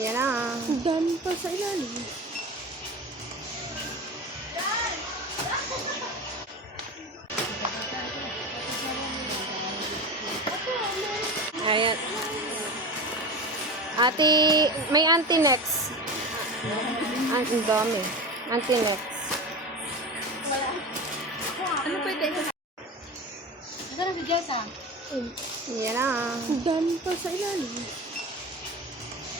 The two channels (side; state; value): both; normal; correlation 0.28